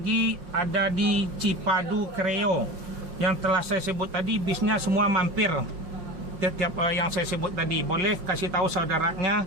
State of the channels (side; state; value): left; late; 5.6 ms